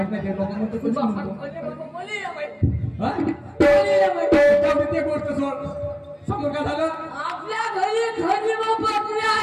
नाही लोक म्हणतो कुठे म्हणतो बोली या बाई. हा बोली या बाई. ते गोष्ट सोड. समोर काय झालं? आपल्या घरी खंडी बकरे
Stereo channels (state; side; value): identical; both; correlation 1.00